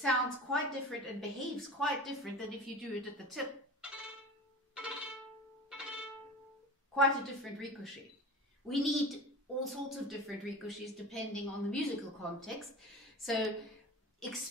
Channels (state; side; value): normal; both; correlation 0.34